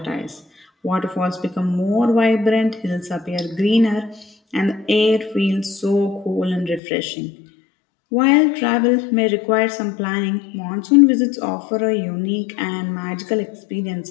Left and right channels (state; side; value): drops out; right; at 6.8 s